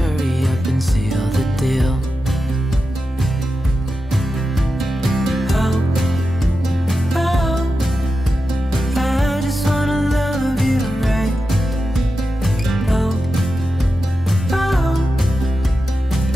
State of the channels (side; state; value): both; normal; correlation 0.91